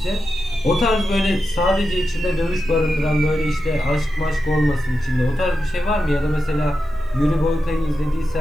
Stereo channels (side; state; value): both; normal; correlation 0.89